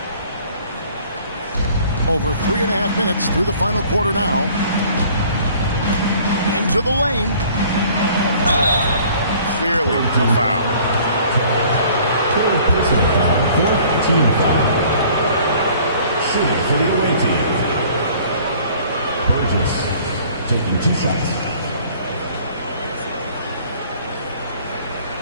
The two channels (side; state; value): both; inverted; correlation -0.53